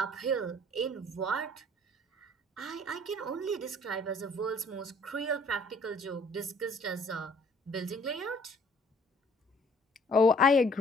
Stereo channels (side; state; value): both; normal; correlation 0.58